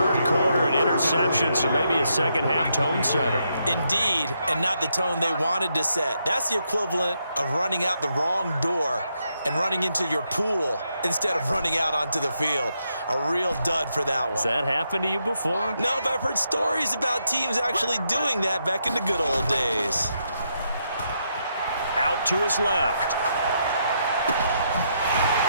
quarter, an interception, so maybe a second-half tone setter. Indeed, and not the tone they wanted to set. That's the equivalent of running out the wrong door and running into your pool instead of running out onto the field. A real dud for that one. Has that happened to you before? No, but I've heard stories about teams actually doing that back in the good old days. Out to his left.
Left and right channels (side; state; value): both; inverted; correlation -0.79